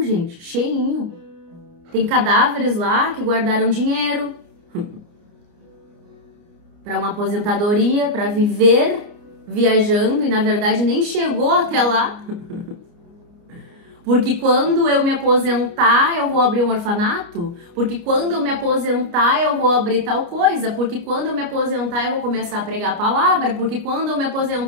gente, cheinho. Tem cadáveres lá que guardaram dinheiro para uma aposentadoria, para viver viajando e na verdade nem chegou até lá. Porque quando eu me aposentar, eu vou abrir um orfanato? Porque quando eu me aposentar, eu vou abrir tal coisa? Porque quando eu me aposentar, eu vou começar a pregar a palavra? Porque quando eu me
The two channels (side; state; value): left; late; 29 ms